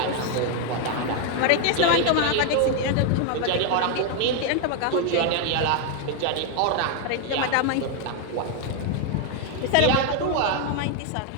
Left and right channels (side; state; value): both; different; correlation 0.01